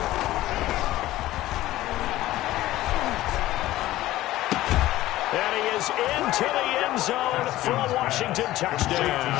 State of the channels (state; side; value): quieter; right; 15.8 dB